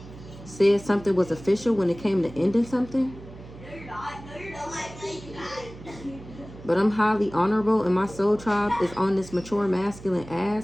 said something was official when it came to ending something. But I'm highly honorable and my soul tribe is on this mature masculine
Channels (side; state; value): right; noise; hum, 17 dB below the sound